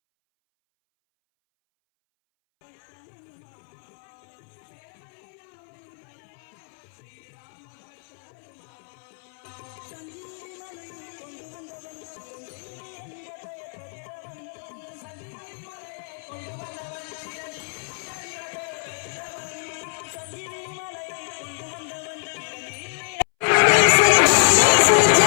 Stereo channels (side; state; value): right; silent; 61 dB below the other